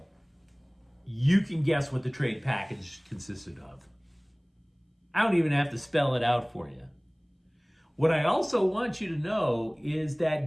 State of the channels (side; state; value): both; identical; correlation 1.00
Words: you can guess what the trade package consisted of. I don't even have to spell it out for you. What I also want you to know is